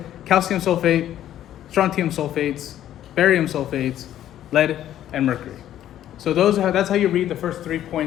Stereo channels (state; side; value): quieter; right; 11.8 dB